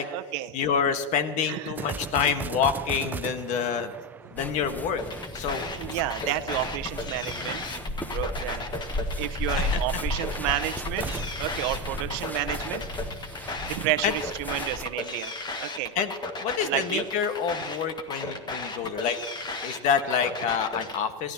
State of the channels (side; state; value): both; normal; correlation 0.11